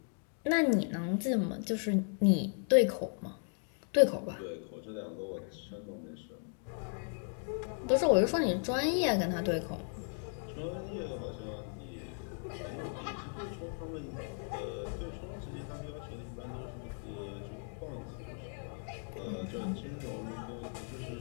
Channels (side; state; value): right; silent; 54 dB below the other